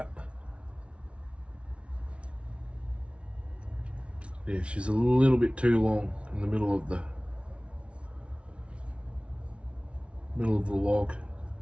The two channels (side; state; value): left; late; 0.060 ms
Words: Yeah, she's a little bit too long in the middle of the log.